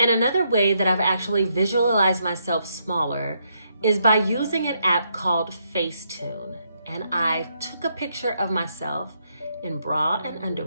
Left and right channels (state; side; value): inverted; both; correlation -0.77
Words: another way that I've actually visualized myself smaller is by using an app called Facetune. And I took a picture of myself in bra and